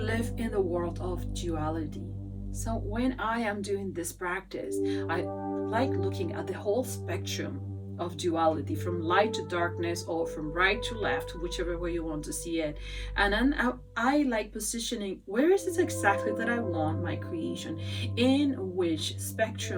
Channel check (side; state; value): both; identical; correlation 1.00